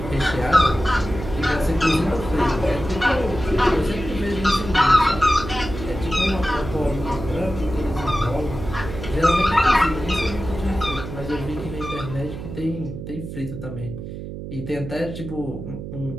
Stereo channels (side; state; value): right; noise; hum, 9 dB below the sound